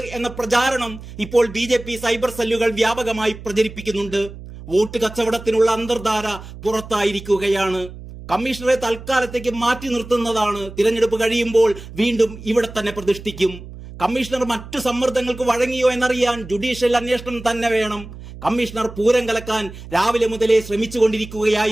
എന്ന പ്രചാരണം ഇപ്പോൾ ബി.ജെ.പി. സൈബർ സെല്ലുകൾ വ്യാപകമായി പ്രചരിപ്പിക്കുന്നുണ്ട്. വോട്ട് കച്ചവടത്തിനുള്ള അന്തർധാര പുറത്തായിരിക്കുകയാണ്. കമ്മീഷണറെ തൽക്കാലത്തേക്ക് മാറ്റി നിർത്തുന്നതാണ്. തിരഞ്ഞെടുപ്പ് കഴിയുമ്പോൾ വീണ്ടും ഇവിടെ തന്നെ പ്രതിഷ്ഠിക്കും. കമ്മീഷണർ മറ്റു സമ്മർദ്ദങ്ങൾക്ക് വഴങ്ങിയോ എന്നറിയാൻ ജുഡീഷ്യൽ അന്വേഷണം തന്നെ വേണം. കമ്മീഷണർ പൂരം കലക്കാൻ രാവിലെ മുതലേ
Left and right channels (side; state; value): right; noise; hum, 14 dB below the sound